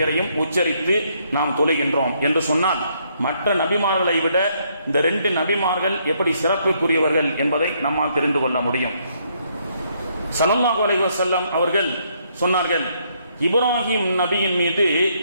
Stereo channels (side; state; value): both; inverted; correlation -0.71